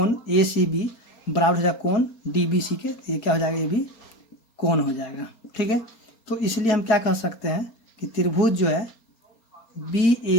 ए सी बी बराबर हो जाएगा कोण डी बी सी के, ये क्या हो जाएगा, ये भी कोण हो जाएगा। ठीक है, तो इसलिए हम क्या कह सकते हैं कि त्रिभुज जो है बी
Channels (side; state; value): right; late; 4.3 ms